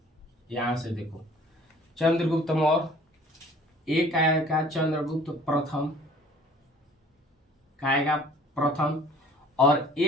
यहां से देखो चंद्रगुप्त मौर्य। एक आएगा चंद्रगुप्त प्रथम, का आएगा प्रथम। और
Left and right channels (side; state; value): both; normal; correlation 0.52